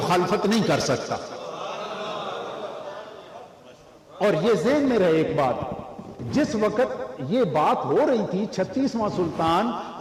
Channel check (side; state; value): both; identical; correlation 1.00